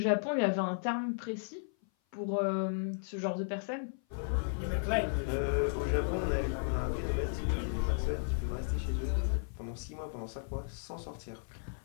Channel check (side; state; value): right; silent; 55 dB below the other